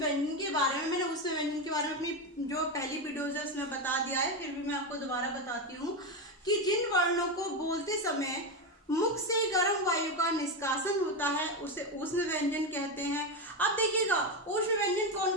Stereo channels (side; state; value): both; normal; correlation 0.12